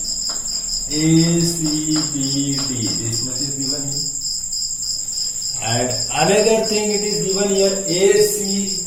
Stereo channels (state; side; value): identical; both; correlation 1.00